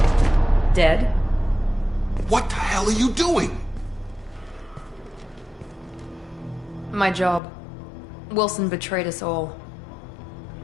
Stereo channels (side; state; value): right; drops out; at 7.4 s